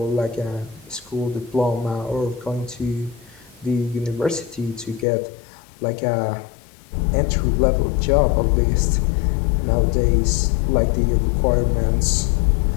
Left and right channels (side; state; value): right; drops out; at 5.1 s